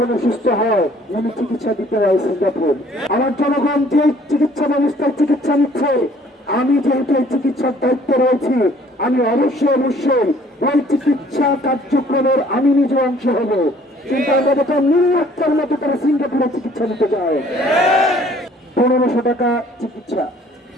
অসুস্থ হয় উনি চিকিৎসা দিতে হয় সিঙ্গাপুর। আমার জনগণ যে চিকিৎসা ব্যবস্থায় চিকিৎসা নিচ্ছে, আমি যেহেতু এই চিকিৎসার দায়িত্বে রয়েছি, আমি অবশ্যই ওই চিকিৎসা কার্যক্রমের আমি নিজে অংশ হব। কিন্তু আমরা দেখলাম নির্লজ্জার মতো তারা সিঙ্গাপুরে চিকিৎসা নিতে যায়। 1500 টাকা চিকিৎসা,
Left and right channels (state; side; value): normal; both; correlation 0.57